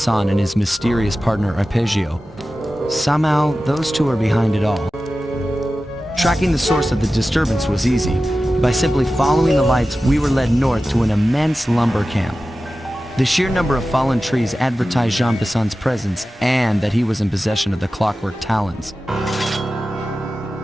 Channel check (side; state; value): both; normal; correlation 0.95